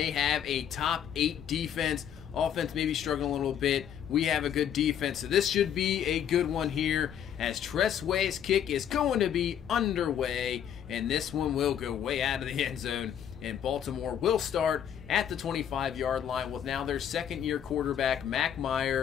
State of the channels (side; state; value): right; quieter; 9.3 dB